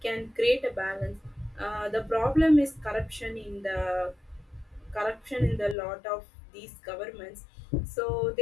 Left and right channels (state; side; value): drops out; right; at 5.8 s